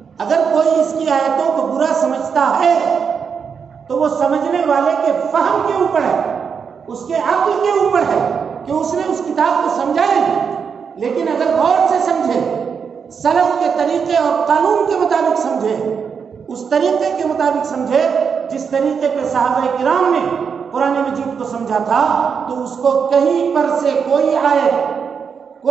اگر کوئی اس کی آیتوں کو برا سمجھتا ہے تو وہ سمجھنے والے کے فہم کے اوپر ہے، اس کے عقل کے اوپر ہے کہ اس نے اس کتاب کو سمجھا نہیں، لیکن اگر غور سے سمجھے، سلف کے طریقے اور قانون کے مطابق سمجھے، اس طریقے کے مطابق سمجھے جس طریقے پہ صحابہ کرام نے قرآن مجید کو سمجھا تھا، تو اس کو کہیں پر سے کوئی آیت،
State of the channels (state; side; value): quieter; left; 6.4 dB